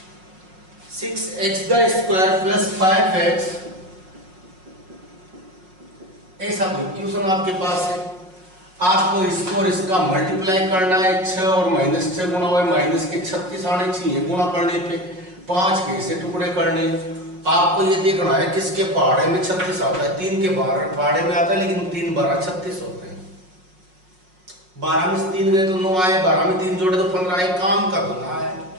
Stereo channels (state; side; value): late; left; 5.4 ms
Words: 6x का स्क्वायर प्लस 5x, ऐसा कोई क्वेश्चन आपके पास है, आपको इसको और इसका मल्टीप्लाई करना है, 6 और -6 गुणा हुआ माइनस के 36 आने चाहिए, गुणा करने पे 5 के ऐसे टुकड़े करने। आपको ये देखना है किसके पहाड़े में 36 आता है, 3 के पहाड़े में आता है, लेकिन 3 12 36 होते हैं, 12 में से 3 गए तो 9 आए, 12 में 3 जोड़े तो 15 आए, काम का गुना है।